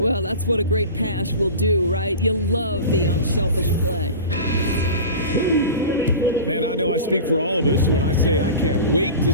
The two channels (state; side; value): inverted; both; correlation -0.33